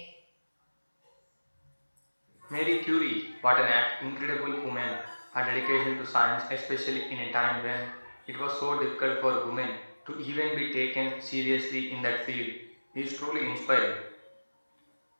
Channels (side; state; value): both; inverted; correlation -1.00